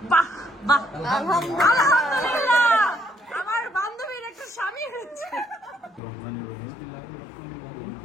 বাহ বাহ, আলহামদুলিল্লাহ, আমার বান্ধবীর একটা স্বামী হয়েছে।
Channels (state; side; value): drops out; right; at 6.0 s